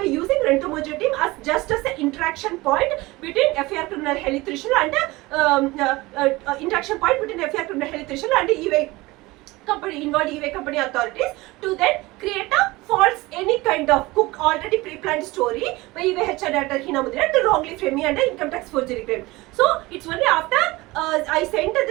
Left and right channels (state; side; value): quieter; left; 21.1 dB